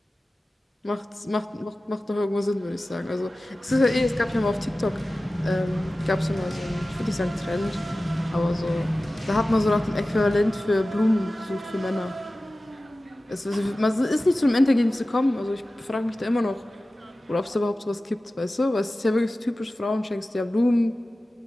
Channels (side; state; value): both; normal; correlation 0.96